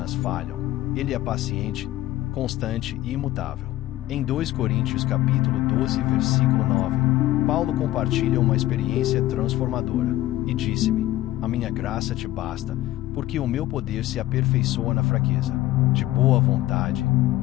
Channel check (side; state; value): right; quieter; 15.6 dB